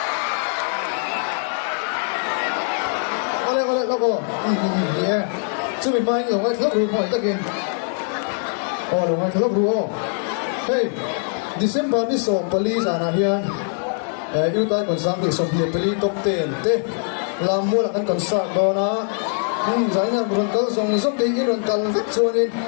Oleh nó cô. Yeah. Chưa mình mai rồi ngay lớp rùa hỏi tất nhiên. Rồi ngay lớp rùa. Hey. December ni som police ana hian yêu tai còn sang thì som le peli top 10 te làm mua là ăn còn sạc đó na giải ngân buồn câu dòng dốc đi cái buồn cần vắt chuồn in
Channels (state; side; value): silent; right; 59 dB below the other